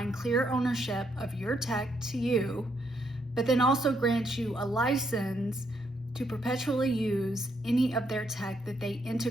clear ownership of your tech to you, but then also grant you a license to perpetually use any of their tech that they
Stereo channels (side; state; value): both; normal; correlation 0.75